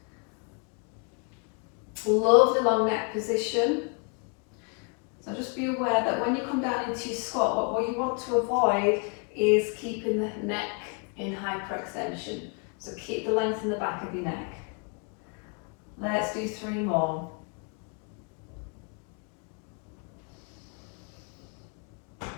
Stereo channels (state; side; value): quieter; right; 37.6 dB